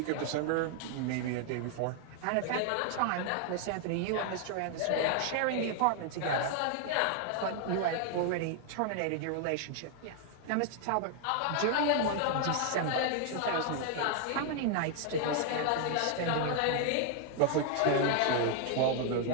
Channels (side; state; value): both; different; correlation 0.00